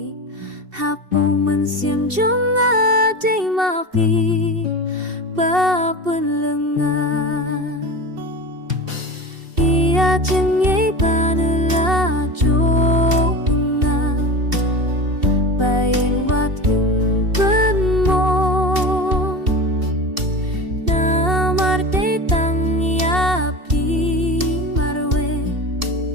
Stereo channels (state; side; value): late; left; 2.7 ms